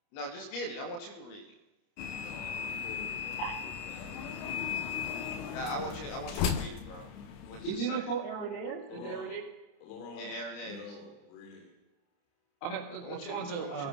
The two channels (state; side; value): late; right; 29 ms